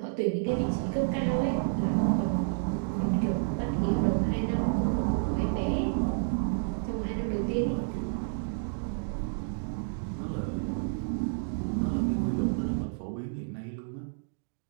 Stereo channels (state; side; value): silent; left; digital silence